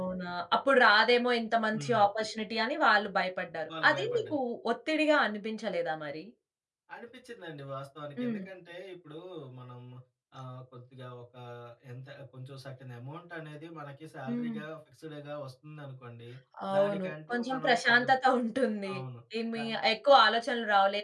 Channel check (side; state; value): both; identical; correlation 1.00